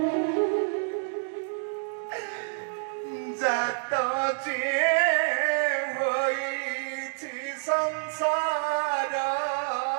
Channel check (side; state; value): left; silent; digital silence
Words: ଜାତ ଯିଏ ହୋଇଛି ସଂସାର